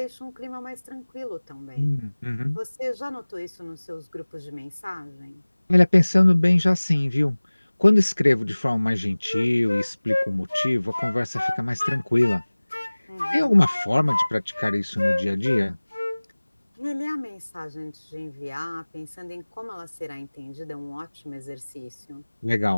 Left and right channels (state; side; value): inverted; both; correlation -1.00